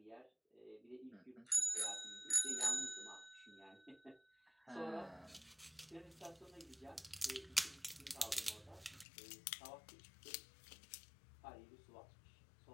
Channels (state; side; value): drops out; right; at 9.1 s